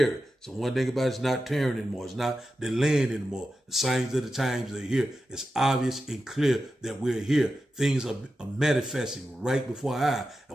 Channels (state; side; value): normal; both; correlation 0.91